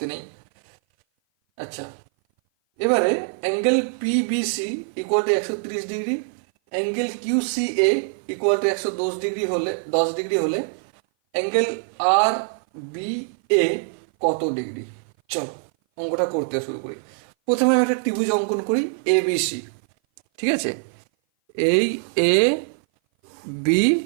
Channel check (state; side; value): silent; left; 57 dB below the other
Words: নেই। আচ্ছা, এবারে angle PBC equal to 130 degree, angle QCA equal to 110 degree হলে 10 ডিগ্রি হলে অ্যাঙ্গেল আর বি এ কত ডিগ্রি? চলো অঙ্কটা করতে শুরু করি। প্রথমে আমি একটা ত্রিভুজ অঙ্কন করি এ বি সি। ঠিক আছে, এই এ বি